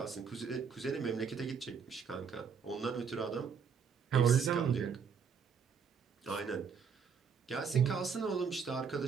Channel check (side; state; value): left; quieter; 6.4 dB